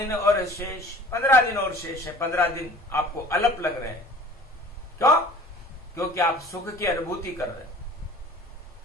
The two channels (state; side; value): normal; both; correlation 0.46